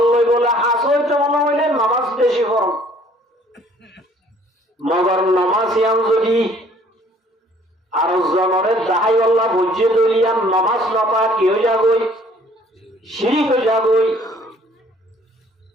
বলে হাস হইতে মনে হইলে নামাজ বেশি পড়ো মগর নামাজ ইয়াম যদি আর জনরে দাহাই আল্লাহ বুঝে দলিয়াম নামাজ নপা কি হয়ে যাবই শিরিক হয়ে যাবই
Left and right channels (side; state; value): both; normal; correlation 0.58